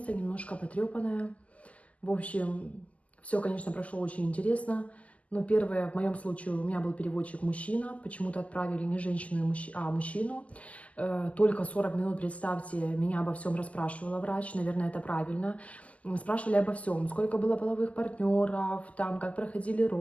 немножко потрепанная. В общем, все, конечно, прошло очень интересно. Но первое, в моем случае, у меня был переводчик мужчина. Почему-то отправили не женщину, а мужчину. Только 40 минут, представьте, меня обо всем расспрашивала врач. Наверное, это правильно. Спрашивали обо всем. Сколько было половых партнеров, там, как проходили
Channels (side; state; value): right; late; 0.069 ms